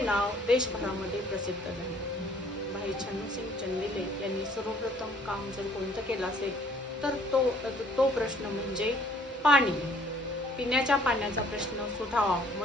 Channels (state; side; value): normal; both; correlation 0.59